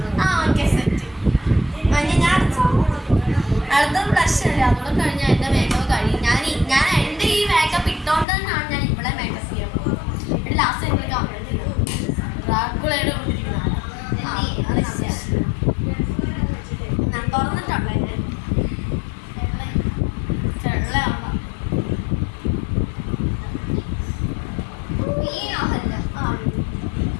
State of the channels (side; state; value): right; drops out; at 8.2 s